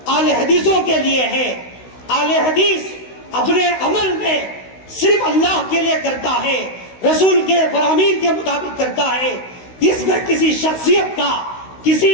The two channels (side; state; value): right; late; 16 ms